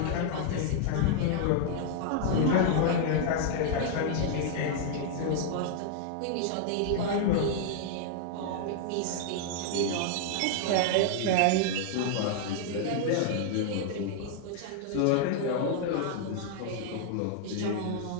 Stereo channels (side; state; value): both; different; correlation 0.00